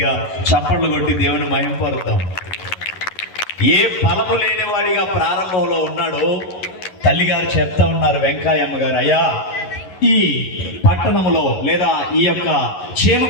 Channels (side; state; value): right; late; 11 ms